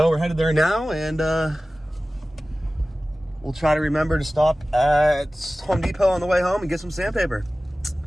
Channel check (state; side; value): normal; both; correlation 0.97